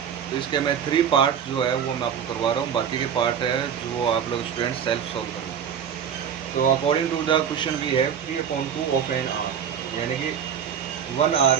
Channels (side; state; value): left; quieter; 8.2 dB